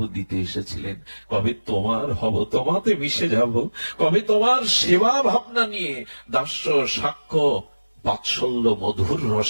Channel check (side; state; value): both; inverted; correlation -1.00